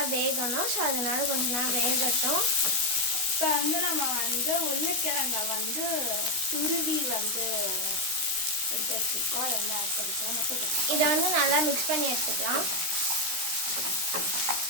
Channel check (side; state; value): left; late; 16 ms